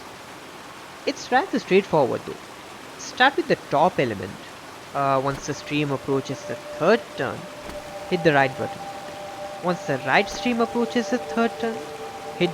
It's rather straightforward though. Start with the top element. Once the stream approaches the 3rd turn, hit the right button. Once the right stream approaches the 3rd turn, hit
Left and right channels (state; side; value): identical; both; correlation 1.00